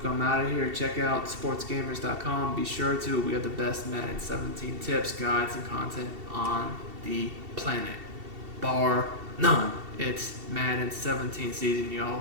I'm out of here. Check out sportsgamers.com. Be sure to. We have the best Madden 17 tips, guides, and content on the planet. Bar none. It's Madden 17 season,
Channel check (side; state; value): left; late; 2.7 ms